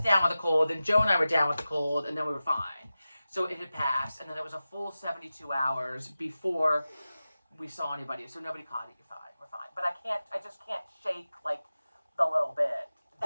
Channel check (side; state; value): both; inverted; correlation -0.95